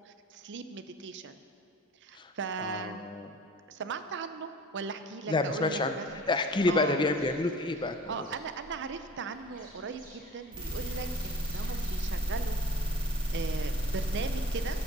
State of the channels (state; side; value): normal; both; correlation 0.43